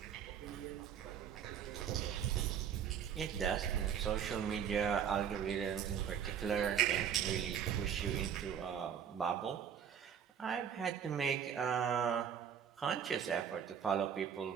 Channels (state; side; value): quieter; left; 8.3 dB